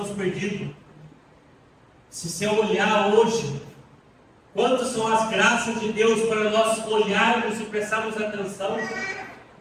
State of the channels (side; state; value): both; identical; correlation 1.00